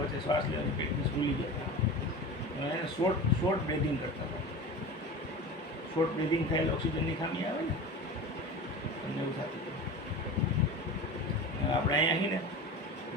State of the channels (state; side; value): normal; both; correlation 0.32